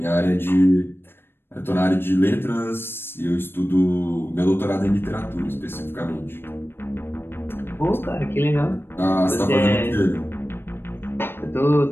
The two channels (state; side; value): late; right; 0.10 ms